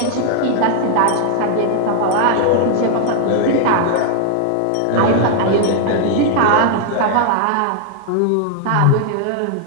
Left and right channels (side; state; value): both; different; correlation 0.00